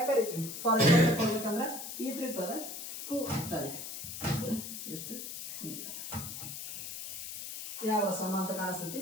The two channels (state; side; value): noise; left; hiss, 7 dB below the sound